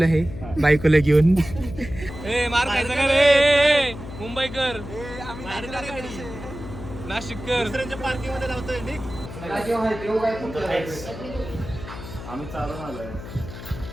आहे बायकोला घेऊन. मार खायचा का रे मुंबईकर, नाशिककर पार्किंग मध्ये लावतोय. आम्ही चालून आलोय.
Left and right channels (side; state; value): left; noise; hum, 12 dB below the sound